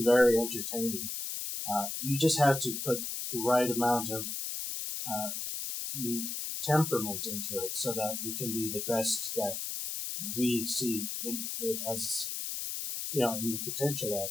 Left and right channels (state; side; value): noise; left; hiss, 4 dB below the sound